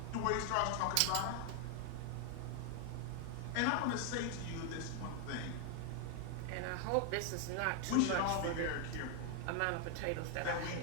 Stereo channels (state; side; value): different; both; correlation 0.00